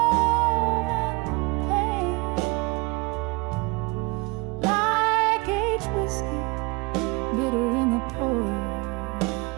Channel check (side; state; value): left; quieter; 25.4 dB